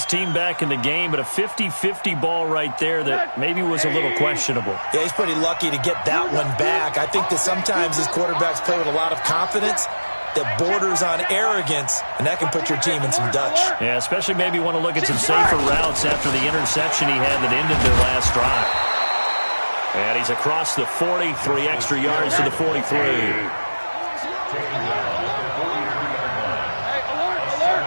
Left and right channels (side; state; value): both; inverted; correlation -1.00